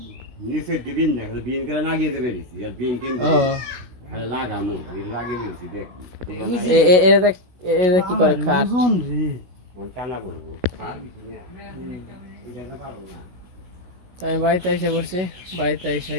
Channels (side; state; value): left; late; 16 ms